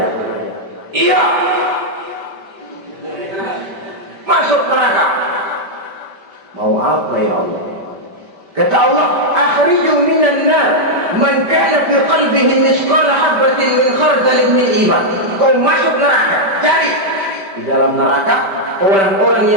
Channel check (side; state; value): left; late; 5.1 ms